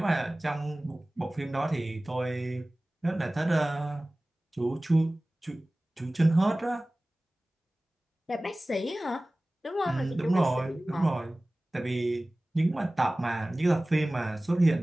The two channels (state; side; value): normal; both; correlation 0.98